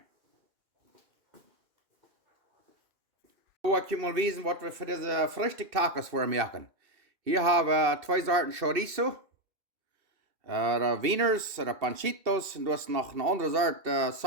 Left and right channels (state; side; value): late; left; 2.7 ms